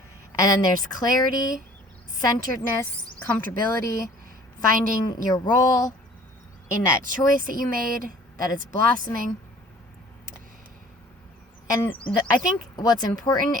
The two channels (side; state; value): both; normal; correlation 0.51